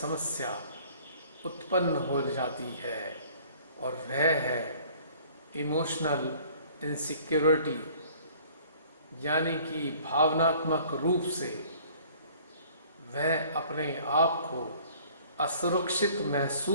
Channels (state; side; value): inverted; both; correlation -0.53